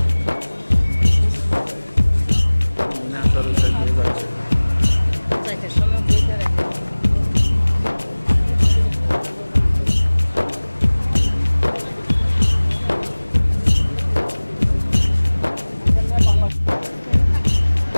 সময় বইতে রাখি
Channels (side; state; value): both; inverted; correlation -1.00